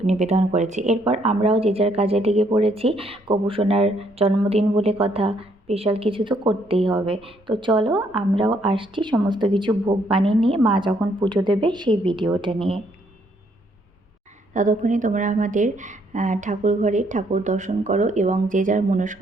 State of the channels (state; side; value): normal; both; correlation 0.70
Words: নিবেদন করেছে। এরপর আমরাও যে যার কাজে লেগে পড়েছি। গোপুসোনার জন্মদিন বলে কথা, স্পেশাল কিছু তো করতেই হবে। তো চলো আমরাও আসছি সমস্ত কিছু ভোগ বানিয়ে নিয়ে, মা যখন পুজো দেবে সেই ভিডিওটা নিয়ে। ততক্ষণে তোমরা আমাদের ঠাকুর ঘরে ঠাকুর দর্শন করো এবং যে যার